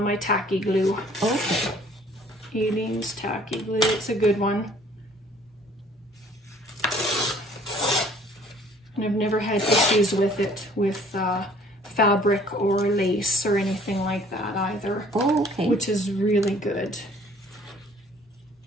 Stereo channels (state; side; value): normal; both; correlation 0.56